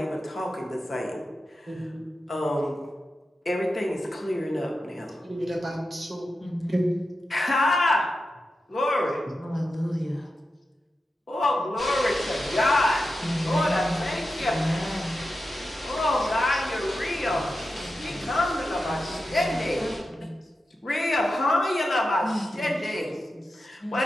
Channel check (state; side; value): normal; both; correlation 0.91